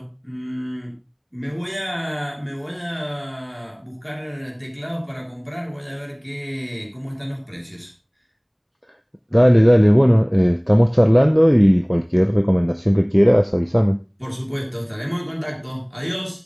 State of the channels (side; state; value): both; identical; correlation 1.00